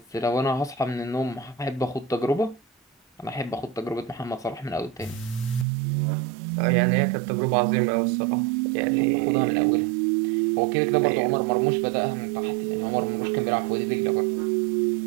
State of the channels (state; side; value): drops out; left; at 5.7 s